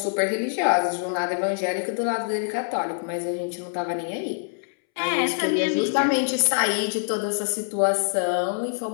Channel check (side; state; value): right; silent; 62 dB below the other